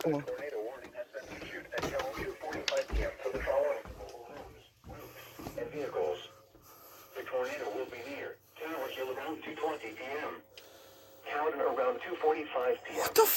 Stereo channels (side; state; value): both; identical; correlation 1.00